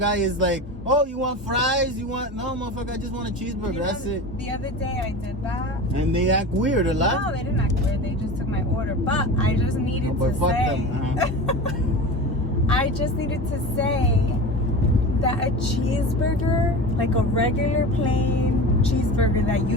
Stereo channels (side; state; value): both; normal; correlation 0.31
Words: is like, oh, you want fries? You want... No, motherfucker, I just want a cheeseburger. That's it. The other day I did that. And they act weird a lot. No, they didn't act weird. They just took my order. But I just needed But to fuck say... them. I just needed to say that a cheeseburger, like a regular plain cheeseburger that